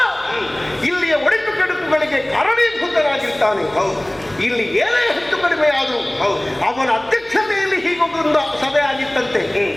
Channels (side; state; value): left; noise; hum, 28 dB below the sound